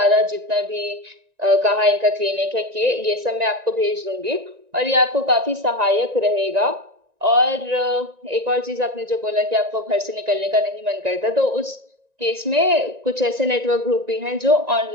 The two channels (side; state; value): left; late; 1.9 ms